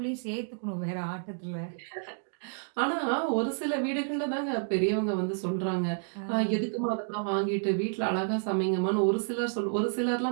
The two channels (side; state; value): left; silent; digital silence